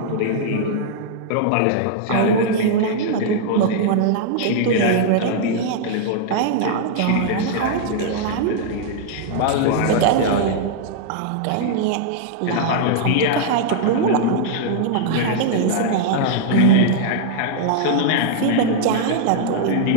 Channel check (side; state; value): both; different; correlation -0.01